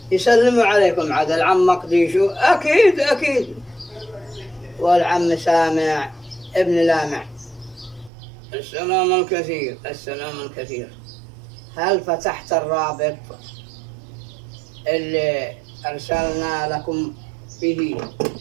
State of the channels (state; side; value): drops out; left; at 8.1 s